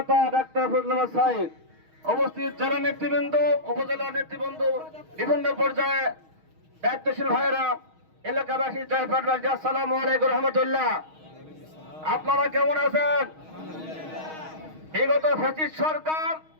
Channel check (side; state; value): left; late; 6.4 ms